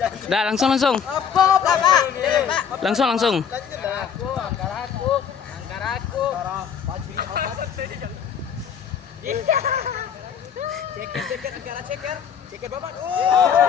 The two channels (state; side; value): quieter; right; 7.6 dB